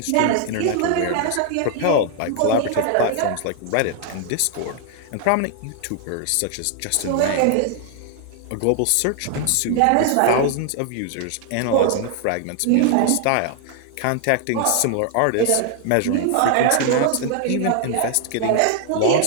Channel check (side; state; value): both; different; correlation 0.00